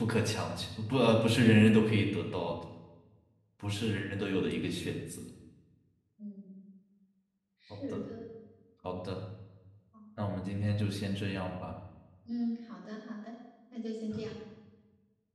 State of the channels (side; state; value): both; identical; correlation 1.00